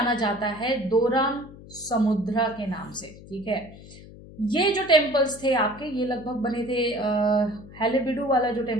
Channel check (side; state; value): left; noise; hum, 18 dB below the sound